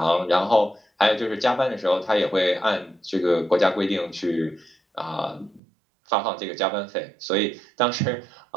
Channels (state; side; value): drops out; left; at 5.6 s